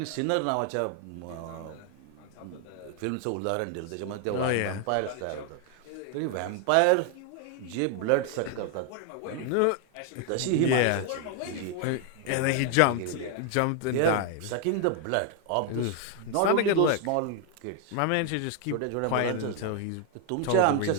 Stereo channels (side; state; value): both; different; correlation 0.00